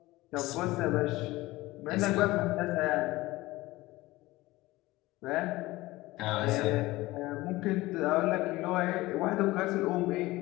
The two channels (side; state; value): right; quieter; 19.0 dB